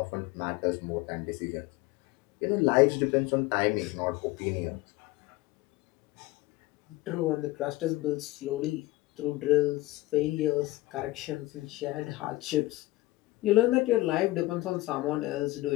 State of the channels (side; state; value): right; quieter; 19.0 dB